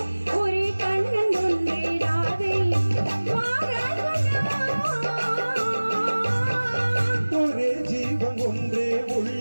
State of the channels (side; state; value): both; inverted; correlation -1.00